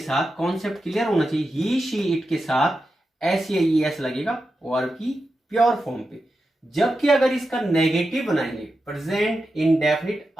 कॉन्सेप्ट क्लियर होना चाहिए। ही शी इट के साथ एस या ई एस लगेगा वर्ब की प्योर फॉर्म पे। जबकि अगर इसका नेगेटिव बनाएंगे, प्रेजेंट इंडेफिनिट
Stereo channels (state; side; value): normal; both; correlation 0.90